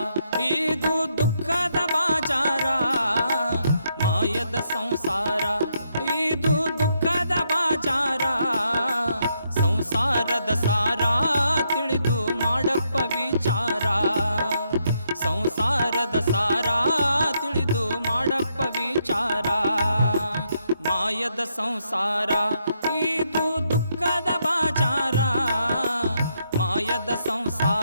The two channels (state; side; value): inverted; both; correlation -0.77